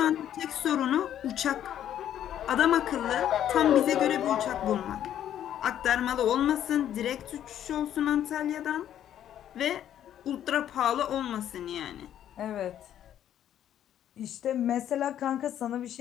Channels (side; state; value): right; quieter; 10.7 dB